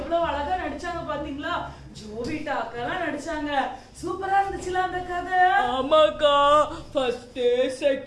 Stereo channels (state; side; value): identical; both; correlation 1.00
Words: அழகா நடிச்சாங்க பாத்தீங்களா? ஜோவிட்டா அக்கா நடிச்சாங்க. சூப்பரா இருந்துச்சுல அந்த கதை. ஆமாக்கா, ஃபர்ஸ்ட்